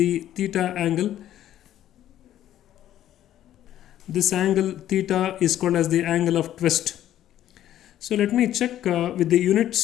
theta angle, this angle theta is called as the angle of twist. So let me check with the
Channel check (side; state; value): right; quieter; 12.1 dB